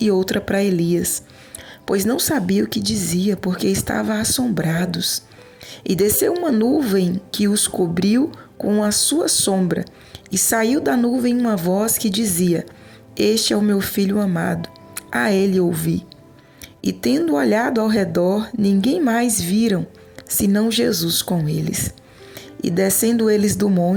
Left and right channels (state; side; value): identical; both; correlation 1.00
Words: e outra para Elias. Pois não sabia o que dizia, porque estavam assombrados. E desceu uma nuvem que os cobriu com a sua sombra, e saiu da nuvem uma voz que dizia: Este é o meu filho amado, a ele ouvi. E tendo olhado ao redor, ninguém mais viram, senão Jesus com eles. E descendo eles do